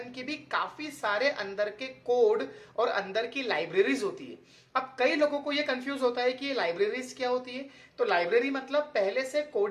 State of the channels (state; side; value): identical; both; correlation 1.00